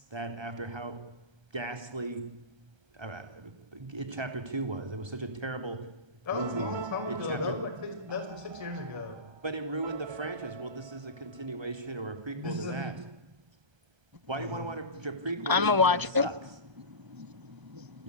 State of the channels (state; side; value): late; left; 1.3 ms